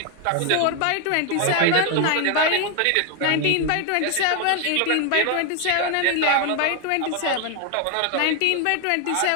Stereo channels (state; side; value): different; both; correlation 0.01